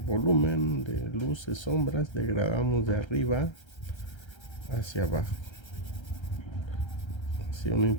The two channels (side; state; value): right; late; 1.3 ms